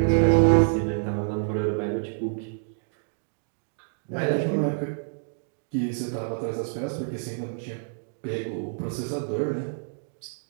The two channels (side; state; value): left; silent; digital silence